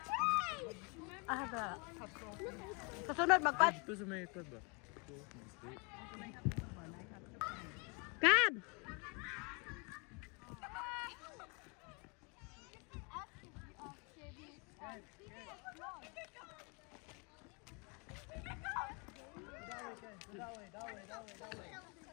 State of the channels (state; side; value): quieter; right; 32.1 dB